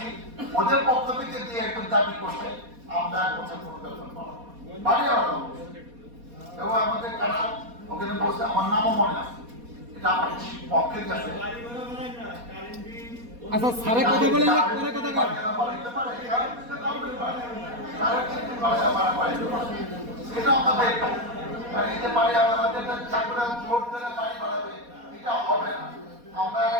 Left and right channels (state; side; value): late; left; 4.2 ms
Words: ওদের পক্ষ থেকে যে একজন দাবি করছে আমরা বছর কোনো বেতন বাড়াবো বাড়ি আলাদা এবং আমাদের কারা ওখানে বসে আমার নামও মনে আছে এটা আমার পক্ষে গেছে আচ্ছা স্যারে কথা বলে পরে কথা বল এটা আমাদের এই যে বাড়ি আমাদের চাকরা জোর করে বাড়ি বাড়াবে এটা হবে না আমরা